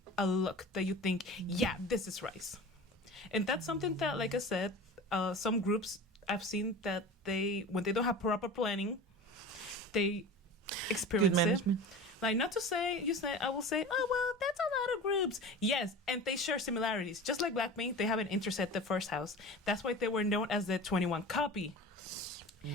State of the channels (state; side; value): normal; both; correlation 0.34